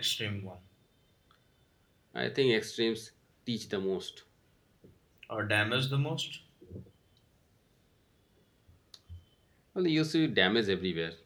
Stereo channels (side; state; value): both; identical; correlation 1.00